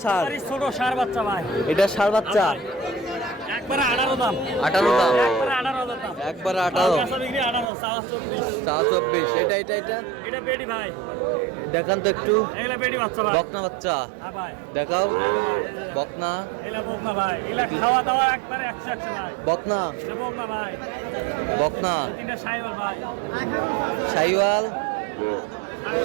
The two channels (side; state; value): left; drops out; at 7.7 s